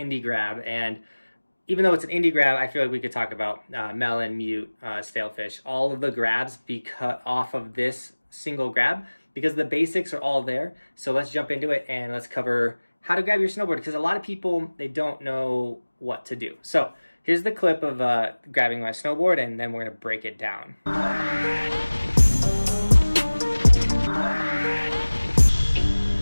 grab, and even though it's an indie grab, I feel like we could talk about melon, mute, stalefish, all of the grabs be cut off of this single grab because the basics are all there. So let's jump into it and let's cover how to grab your snowboard, because a lot of people, they don't know what to do. So here's the clip of grabbing my snowboard, and then we're gonna break it down. All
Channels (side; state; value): both; inverted; correlation -1.00